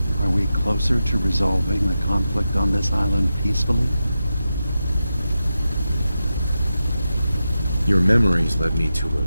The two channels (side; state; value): both; inverted; correlation -0.90